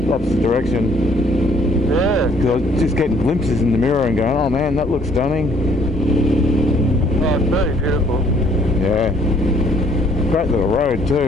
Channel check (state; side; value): normal; both; correlation 0.61